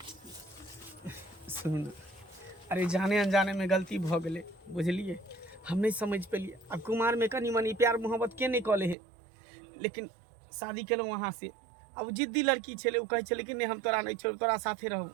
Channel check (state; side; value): drops out; left; at 9.0 s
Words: सुन, अरे जाने अनजाने में गलती भ गेलै, बुझलिए? हम नहीं समझ पेलिए। अब कुमार में कनी मनी प्यार मोहब्बत के नहीं कले है, लेकिन शादी केलहुँ वहाँ से। अब जिद्दी लड़की छे, उ कहे छे कि नहीं हम तोरा नहीं छोड़, तोरा साथे रहू।